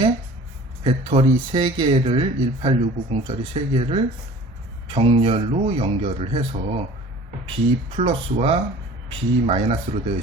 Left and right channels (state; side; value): normal; both; correlation 0.45